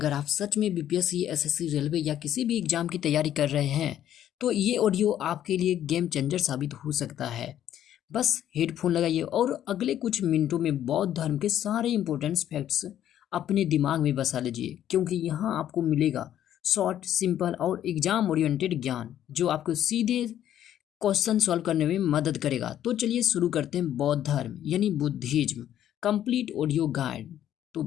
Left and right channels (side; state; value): right; quieter; 11.2 dB